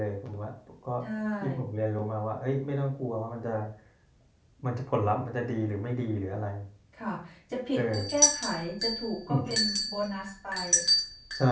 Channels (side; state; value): both; identical; correlation 1.00